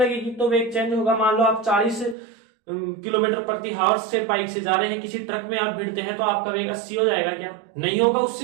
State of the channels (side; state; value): left; drops out; at 2.1 s